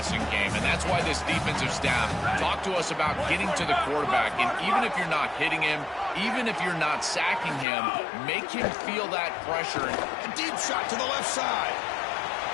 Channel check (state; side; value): drops out; right; at 7.7 s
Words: game, and that's why this defensive staff talked to us about getting to the quarterback, and even if you're not hitting him, even if you're not sacking him, make him feel that pressure. A deep shot to the left side.